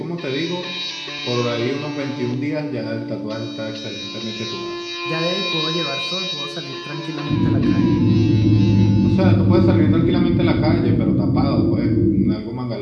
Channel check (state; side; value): identical; both; correlation 1.00